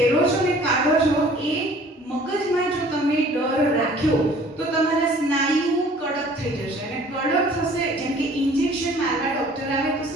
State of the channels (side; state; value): both; normal; correlation 0.52